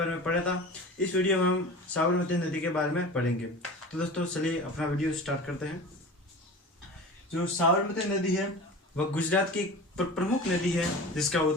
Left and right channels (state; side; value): normal; both; correlation 0.35